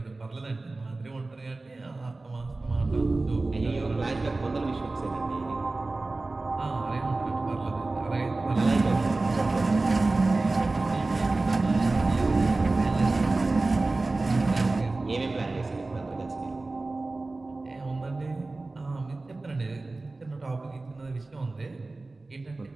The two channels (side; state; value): left; quieter; 3.3 dB